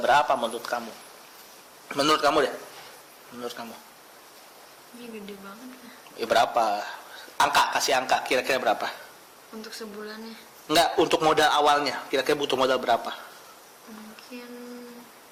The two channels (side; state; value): both; identical; correlation 1.00